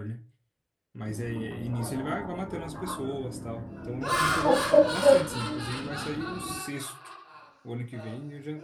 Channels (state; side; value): identical; both; correlation 1.00